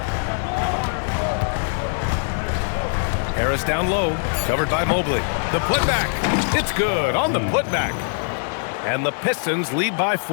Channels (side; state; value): right; silent; 59 dB below the other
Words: Harris down low, covered by Mobley. The putback. It's good on the putback. And the Pistons lead by